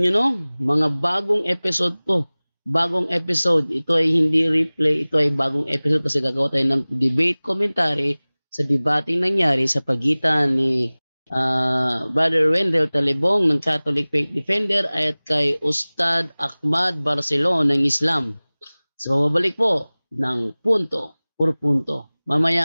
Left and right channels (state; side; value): inverted; both; correlation -1.00